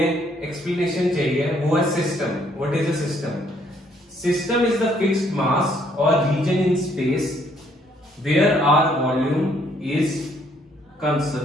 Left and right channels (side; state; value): both; normal; correlation 0.67